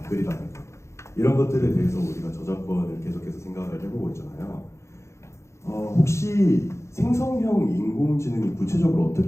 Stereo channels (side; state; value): right; late; 0.14 ms